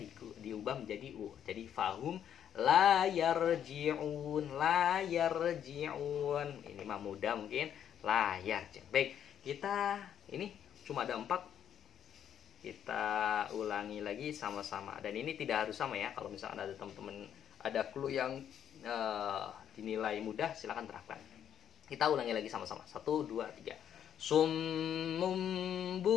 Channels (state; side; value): quieter; right; 9.5 dB